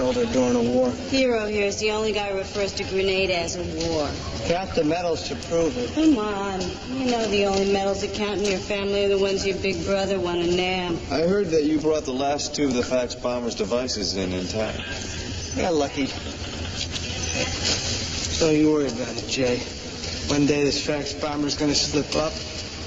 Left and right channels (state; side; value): identical; both; correlation 1.00